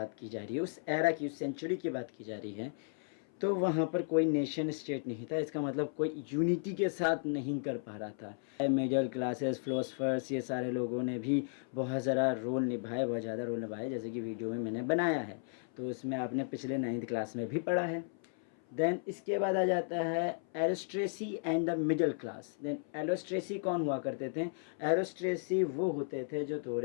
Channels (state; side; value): silent; right; 54 dB below the other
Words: की जा रही है, उस एरा की, उस सेंचुरी की बात की जा रही है, तो वहाँ पर कोई नेशन स्टेट नहीं था। इसका मतलब कोई यूनिटी के साथ नहीं कर पा रहा था। मिडिल क्लासेस, फिलोसफर्स, ये सारे लोगों ने भी बहुत ज़्यादा रोल निभाए, बहुत ज़्यादा रोल निभाए, जैसे कि वीडियो में मैंने बनाया है, तो उसमें आपने पिछले 9th क्लास में भी पढ़ा है। देन इसके बाद आ जाता है aristocracy and the middle class. Then aristocracy कौन हुआ करते थे, एरिस्ट्रेसी वो होते थे जो